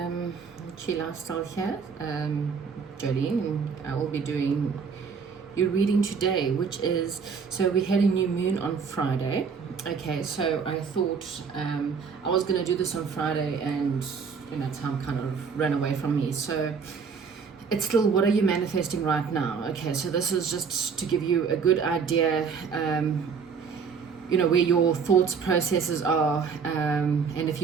Lifestyle here, Jolene, and I will be doing your reading today, which is, so we had a new moon on Friday. Okay, so I thought I was going to do this on Friday, and time kind of ran away from me. So it's still, what are you manifesting right now? Okay, so this is just to give you a good idea, where your thoughts processes are, and if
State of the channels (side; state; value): left; quieter; 5.9 dB